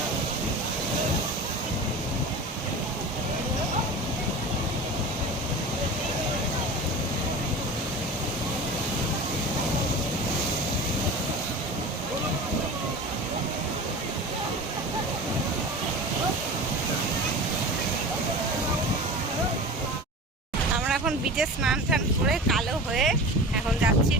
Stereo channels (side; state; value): both; normal; correlation 0.33